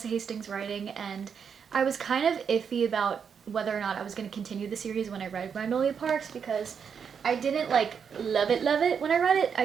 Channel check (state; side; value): quieter; left; 6.9 dB